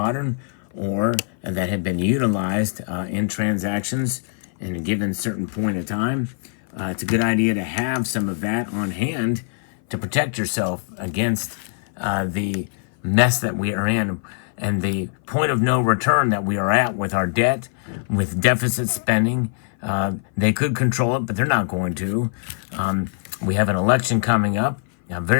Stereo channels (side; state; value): right; silent; 57 dB below the other